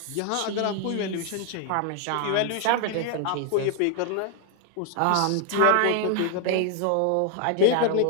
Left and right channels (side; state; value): both; different; correlation 0.00